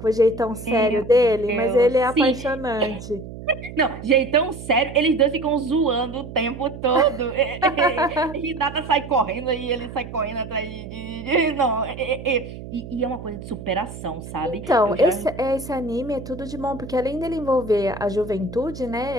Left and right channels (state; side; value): noise; right; hum, 12 dB below the sound